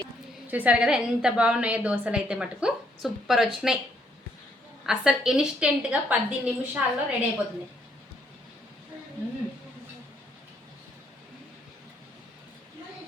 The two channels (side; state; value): both; normal; correlation 0.71